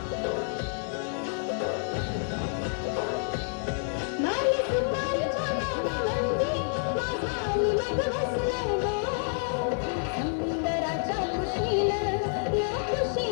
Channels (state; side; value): silent; right; digital silence